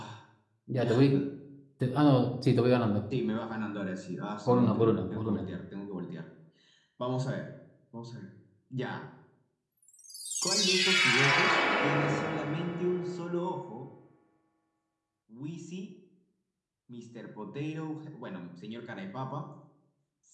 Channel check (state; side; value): identical; both; correlation 1.00